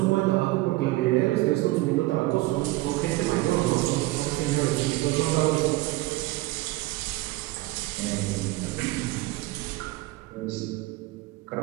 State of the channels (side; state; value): left; quieter; 19.2 dB